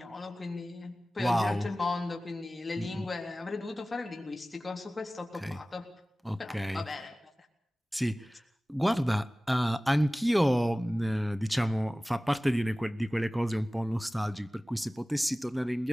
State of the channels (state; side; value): normal; both; correlation 0.98